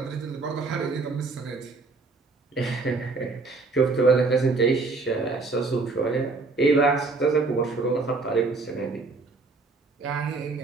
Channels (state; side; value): quieter; left; 3.8 dB